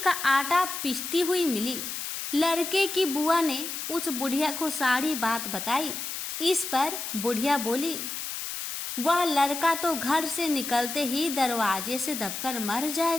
आटा पीसती हुई मिली। लड़के की बुआ ने उस बुढ़िया को सारी बात बताई। इस पर बुढ़िया बोली, वह लड़का तो घर से निकलते ही दरवाजे से दबकर मर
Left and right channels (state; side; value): noise; left; hiss, 5 dB below the sound